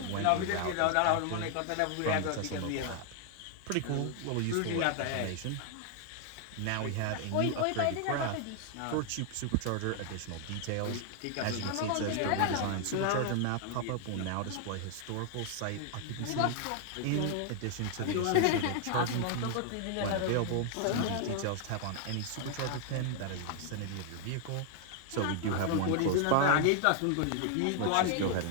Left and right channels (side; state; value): both; different; correlation 0.00